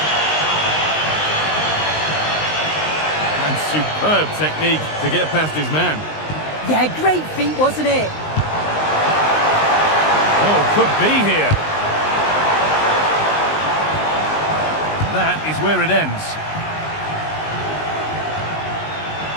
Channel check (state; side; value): late; right; 19 ms